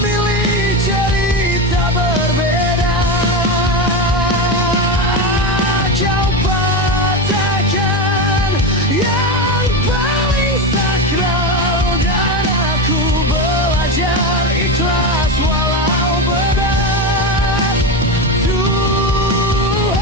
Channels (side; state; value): both; normal; correlation 0.16